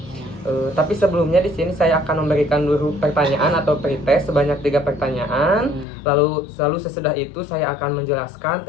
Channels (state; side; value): drops out; right; at 5.9 s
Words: Tapi sebelumnya di sini saya akan memberikan dulu pertanyaan atau pretest sebanyak 3 pertanyaan. Lalu sesudah itu saya akan menjelaskan